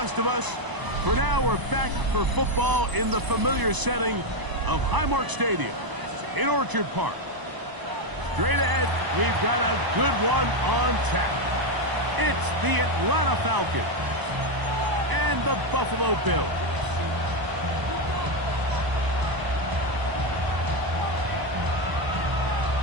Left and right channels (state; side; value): late; left; 1.0 ms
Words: of us, for now we're back for football in the familiar setting of Highmark Stadium in Orchard Park. Straight ahead, we've got a good one on tap. It's the Atlanta Falcons and the Buffalo Bills.